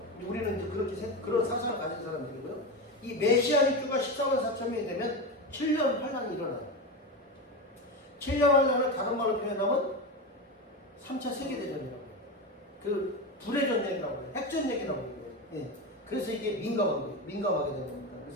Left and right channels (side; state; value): both; normal; correlation 0.19